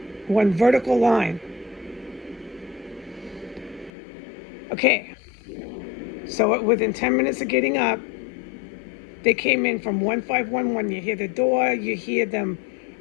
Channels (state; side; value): drops out; right; at 3.9 s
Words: One vertical line. Okay, so within 10 minutes of getting up, they came in from 1511. You hear the door, you hear them